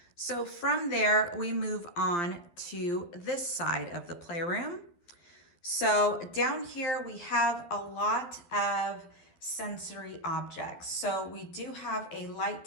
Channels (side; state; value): right; late; 12 ms